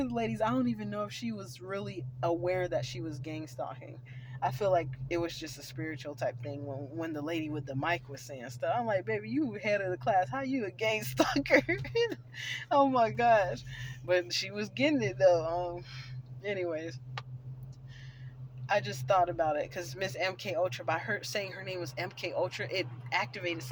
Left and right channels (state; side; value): identical; both; correlation 1.00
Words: the ladies, I don't even know if she was really aware that she was gang stalking. I feel like it was just a spiritual type thing when the lady with the mic was saying stuff. I'm like, baby, you head of the class. How you a gang stalker? Oh my gosh. But she was getting it though. Anyways, I just thought about it because Miss MK Ultra, by her saying her name was MK Ultra, it activated